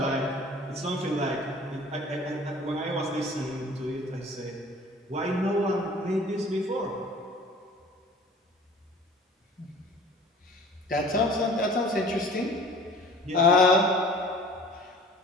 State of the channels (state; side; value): normal; both; correlation 0.46